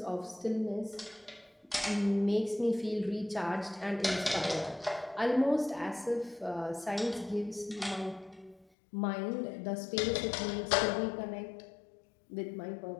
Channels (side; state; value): right; drops out; at 8.7 s